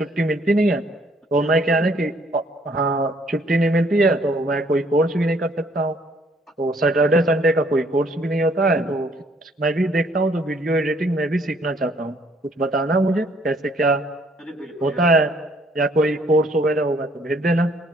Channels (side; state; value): both; normal; correlation 0.64